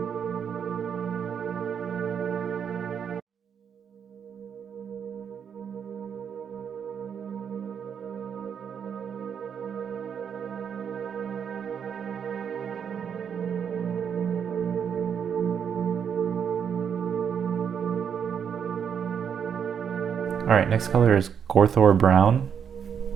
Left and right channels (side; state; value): left; quieter; 7.6 dB